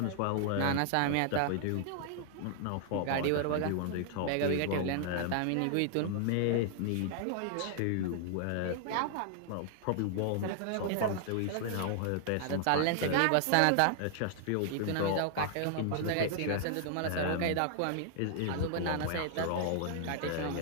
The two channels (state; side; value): different; both; correlation 0.00